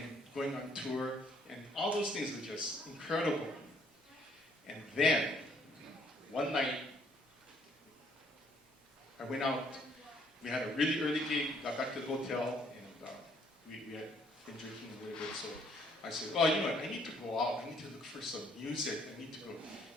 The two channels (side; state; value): both; normal; correlation 0.65